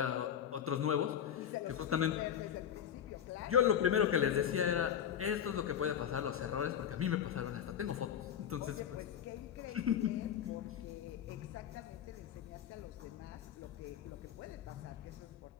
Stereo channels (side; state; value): right; quieter; 9.2 dB